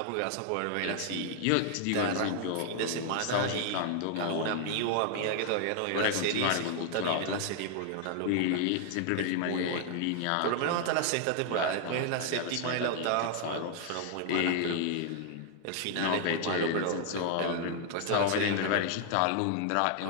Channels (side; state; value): both; different; correlation 0.00